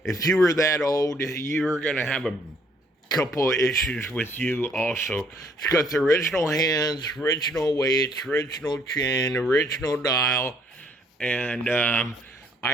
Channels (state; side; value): normal; both; correlation 0.65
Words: if you were that old, you were going to have a couple of issues with you also. It's got the original hands, original weights, original chain, original dial. And